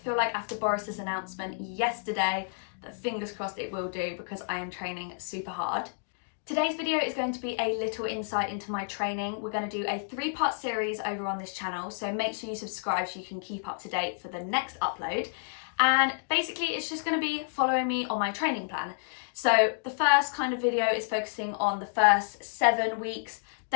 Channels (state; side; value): silent; right; digital silence